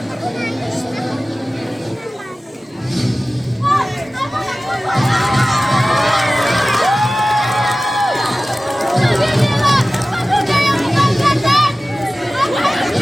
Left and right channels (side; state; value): both; normal; correlation 0.97